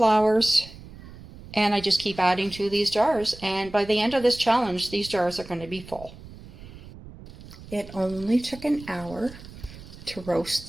And I just keep adding to these jars. And by the end of this challenge, these jars are going to be full. It only took an hour to roast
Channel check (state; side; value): noise; right; rumble, 17 dB below the sound